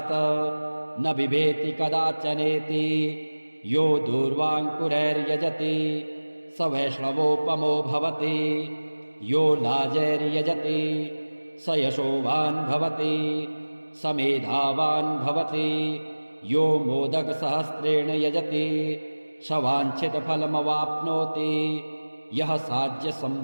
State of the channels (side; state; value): both; inverted; correlation -1.00